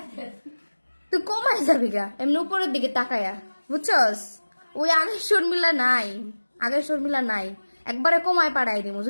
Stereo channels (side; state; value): both; inverted; correlation -1.00